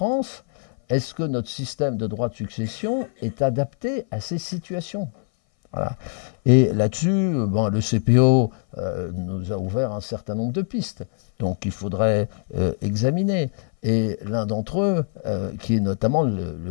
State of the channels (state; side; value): silent; right; 59 dB below the other